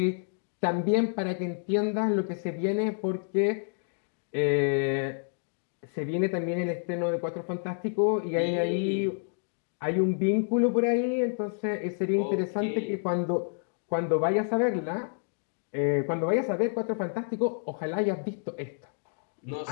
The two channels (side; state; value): right; silent; digital silence